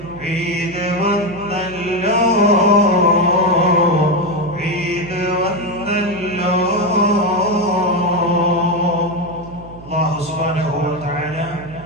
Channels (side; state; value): right; noise; hum, 17 dB below the sound